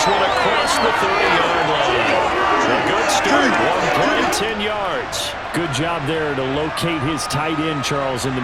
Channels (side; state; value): both; identical; correlation 1.00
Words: one across the 30-yard line. A good start, 1 play, 10 yards. Good job there to locate his tight end, Charles, in the